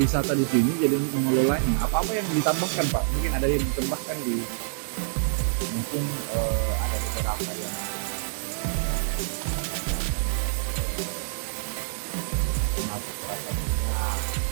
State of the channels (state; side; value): silent; left; digital silence